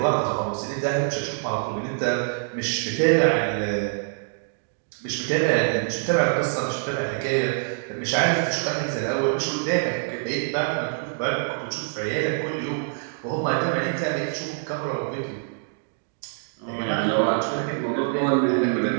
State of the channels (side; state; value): left; silent; digital silence